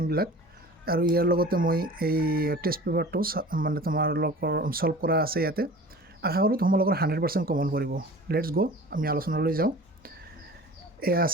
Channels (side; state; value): both; normal; correlation 0.41